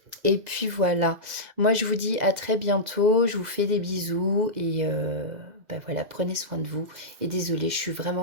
voilà. Moi, je vous dis à très bientôt. Je vous fais des bisous et bah voilà, prenez soin de vous. Et désolée, je suis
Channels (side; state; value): left; late; 2.0 ms